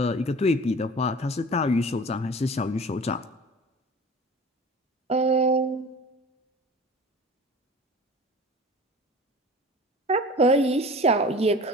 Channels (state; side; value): normal; both; correlation 0.41